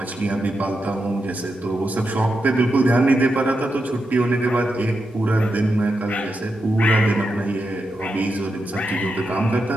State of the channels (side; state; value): both; normal; correlation 0.86